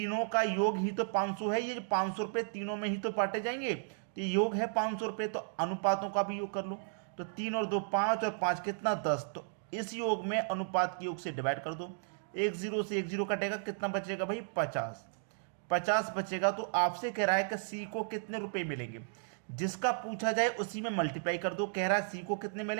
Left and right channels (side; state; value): left; silent; digital silence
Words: का योग ही तो 500 है। ये 500 रुपए तीनों में ही तो बांटे जाएंगे, तो योग है 500 रुपए, तो अनुपातों का भी योग कर लो। तो 3 और 2 5 और 5 कितना? 10। तो इस योग में अनुपात के योग से डिवाइड कर दो। एक जीरो से एक जीरो कटेगा, कितना बचेगा भाई? 50। 50 बचेगा। तो आपसे कह रहा है कि सी को कितने रुपए मिलेंगे। जिसका पूछा जाए उसी में मल्टीप्लाई कर दो। कह रहा है सी को कितने